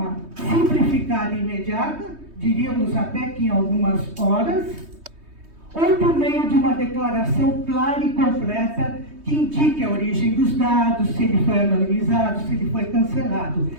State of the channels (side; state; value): left; late; 3.2 ms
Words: simplificada e imediata, diríamos até que em algumas horas, ou por meio de uma declaração clara e completa que indique a origem dos dados, se ele foi anonimizado, se ele foi cancelado.